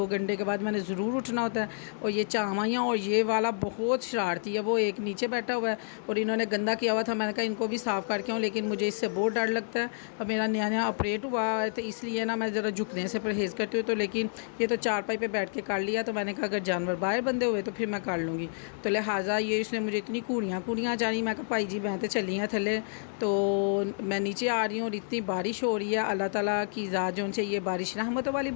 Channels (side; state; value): right; silent; digital silence